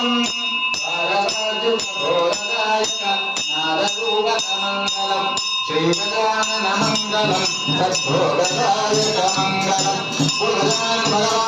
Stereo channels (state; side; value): identical; both; correlation 1.00